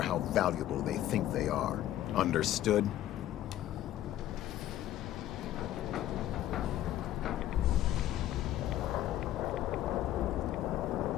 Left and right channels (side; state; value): right; quieter; 13.0 dB